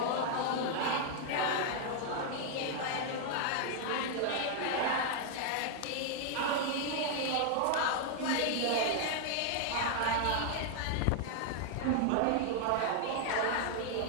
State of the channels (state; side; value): different; both; correlation 0.00